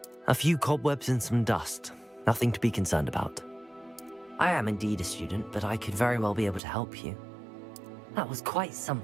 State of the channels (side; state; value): left; drops out; at 6.6 s